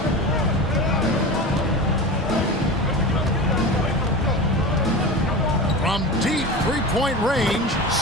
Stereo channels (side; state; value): both; normal; correlation 0.29